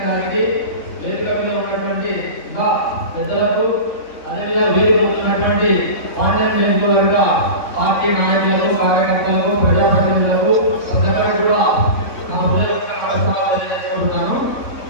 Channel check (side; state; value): right; late; 3.6 ms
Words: గారికి, వేదిక మీద ఉన్నటువంటి ఇంకా పెద్దలకు, అదేవిధంగా వీరు ఉన్నటువంటి పాండ్యం నియోజకవర్గ పార్టీ నాయకులకు, కార్యకర్తలకు, ప్రజాప్రతినిధులకు ప్రజలకు కూడా నా హృదయపూర్వక తెలియజేసుకుంటున్నాను.